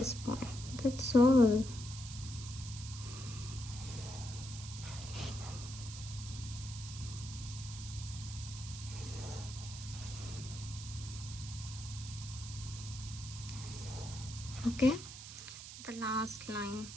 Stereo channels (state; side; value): noise; right; hiss, 11 dB below the sound